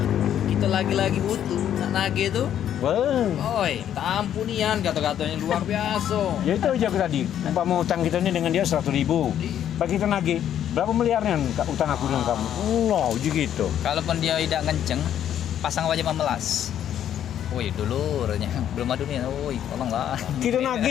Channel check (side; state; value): right; quieter; 10.3 dB